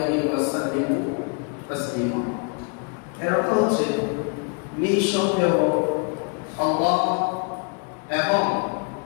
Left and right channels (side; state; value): right; quieter; 36.4 dB